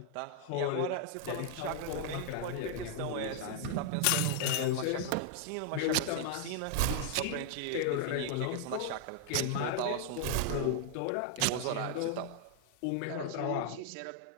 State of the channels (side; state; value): both; different; correlation 0.00